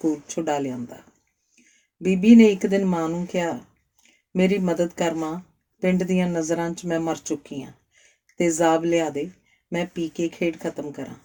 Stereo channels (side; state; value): both; identical; correlation 1.00